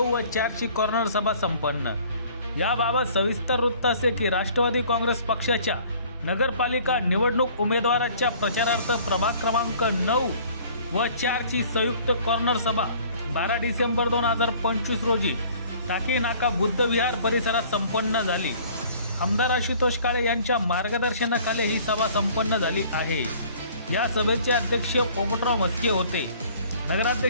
व 4 ची कॉर्नर सभा संपन्न। याबाबत सविस्तर वृत्त असे की राष्ट्रवादी काँग्रेस पक्षाच्या नगरपालिका निवडणूक उमेदवाराच्या प्रचारार्थ प्रभाग क्रमांक 9 व 4 ची संयुक्त कॉर्नर सभा 12 डिसेंबर 2025 रोजी टाकी नाका बुद्ध विहार परिसरात संपन्न झाली। आमदार आशुतोष काळे यांच्या मार्गदर्शनाखाली ही सभा संपन्न झाली आहे। या सभेचे अध्यक्ष पोपटराव म्हस्के होते।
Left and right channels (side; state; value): both; inverted; correlation -0.52